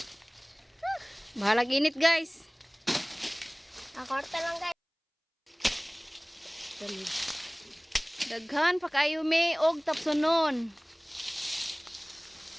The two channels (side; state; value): both; identical; correlation 1.00